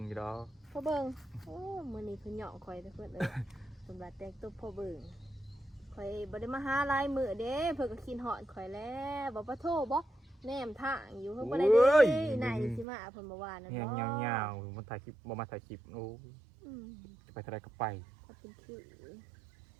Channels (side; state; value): left; drops out; at 12.9 s